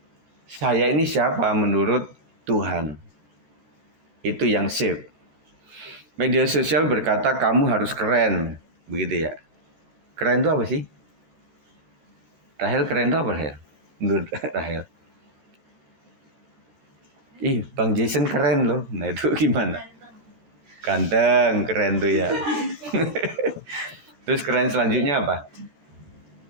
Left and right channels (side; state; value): left; late; 14 ms